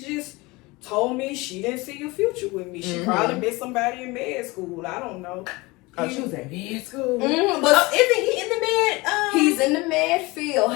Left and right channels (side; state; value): right; quieter; 23.2 dB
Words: told me she didn't see a future with me. She probably met somebody in med school. I don't know. Oh, she was in med school. But isn't he in the med? He's in the med field.